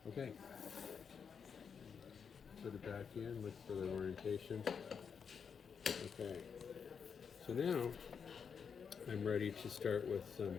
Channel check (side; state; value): right; quieter; 6.5 dB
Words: Okay. Put it back in, look for the orientation. Okay. So now I'm ready to start with